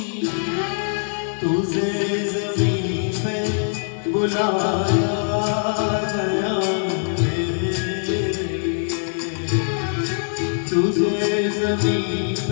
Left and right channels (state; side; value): silent; right; digital silence